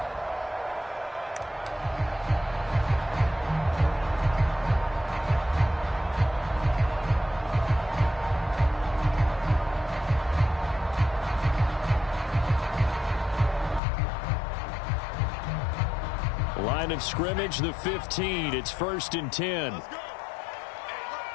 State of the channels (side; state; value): right; drops out; at 13.8 s